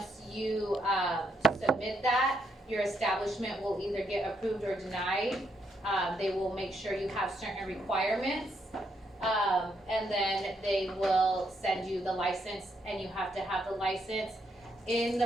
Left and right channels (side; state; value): both; normal; correlation 0.76